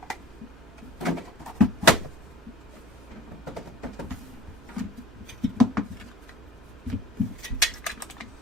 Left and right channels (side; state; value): both; normal; correlation 0.45